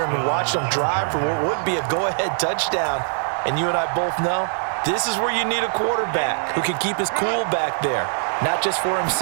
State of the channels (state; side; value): silent; left; digital silence